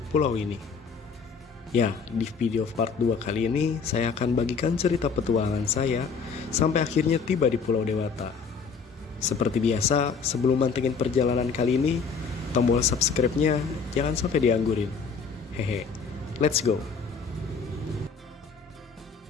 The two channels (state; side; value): quieter; right; 5.5 dB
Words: pulau ini. Ya, di video part 2 kali ini, saya akan bagikan cerita petualangan saya sampai akhirnya tiba di Pulau Dewata. Seperti biasa, sebelum mantengin perjalanan kali ini, tombol subscribe-nya jangan sampai dianggurin. Hehe, let's go!